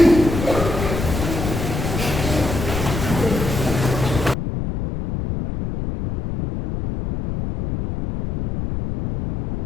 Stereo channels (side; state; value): left; noise; rumble, 4 dB below the sound